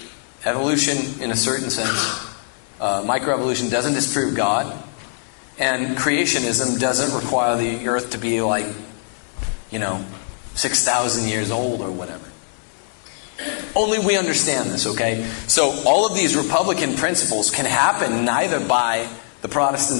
Evolution, in a certain sense, microevolution doesn't disprove God. And creationism doesn't require the earth to be like, 6,000 years old or whatever. Only we understand this, okay? So all of these Republican principles can happen neither by the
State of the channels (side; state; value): right; silent; digital silence